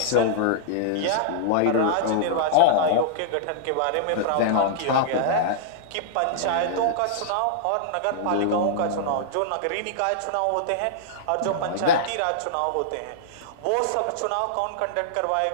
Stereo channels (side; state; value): both; different; correlation -0.01